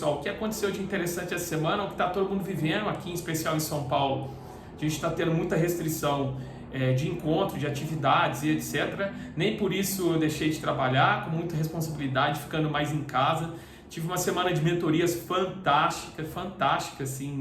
o que aconteceu de interessante essa semana, o que está todo mundo vivendo aqui, em especial em São Paulo. A gente está tendo muita restrição de encontro, de atividades e etc. Nem por isso eu deixei de trabalhar, com muita responsabilidade, ficando mais em casa. Tive uma semana de mentorias fantástica,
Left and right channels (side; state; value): both; identical; correlation 1.00